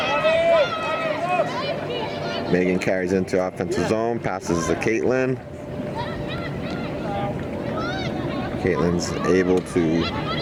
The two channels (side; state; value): both; identical; correlation 1.00